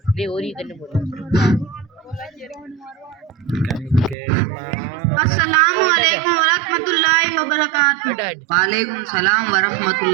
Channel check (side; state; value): left; drops out; at 4.2 s